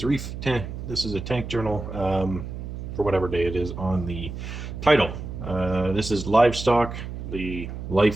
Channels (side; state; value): right; noise; hum, 8 dB below the sound